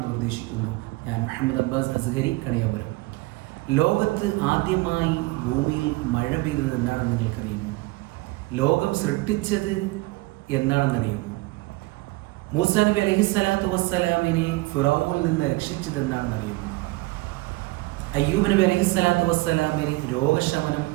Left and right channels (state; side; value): quieter; left; 21.7 dB